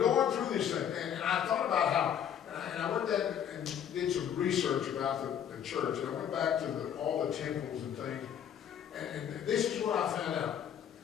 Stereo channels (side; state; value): right; quieter; 9.1 dB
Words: through this thing, and I thought about how, and I went there and did some research about the church, and I went back to all the temples and things, and this is what I found out.